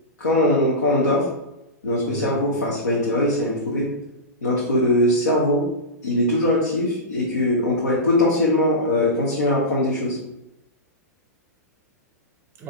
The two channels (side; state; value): both; normal; correlation -0.17